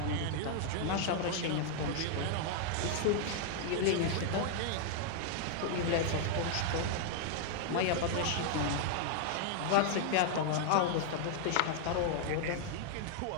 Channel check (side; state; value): both; different; correlation 0.00